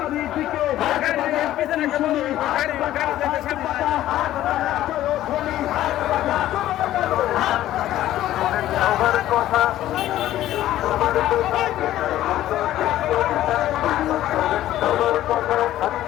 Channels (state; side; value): quieter; right; 13.6 dB